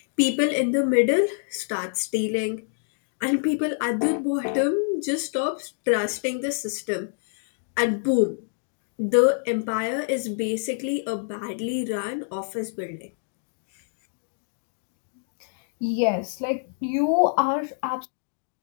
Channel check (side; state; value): right; silent; digital silence